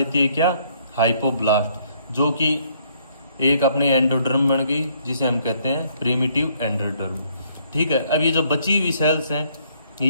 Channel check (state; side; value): inverted; both; correlation -0.66